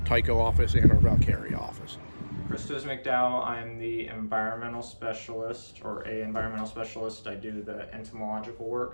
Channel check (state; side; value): inverted; both; correlation -1.00